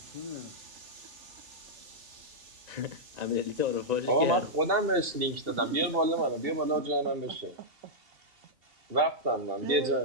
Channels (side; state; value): left; late; 2.7 ms